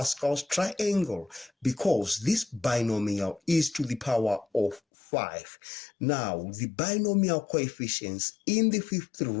triangle because this binomial is to the power of 5. Now, the binomial coefficients in the fifth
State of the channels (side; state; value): right; drops out; at 4.8 s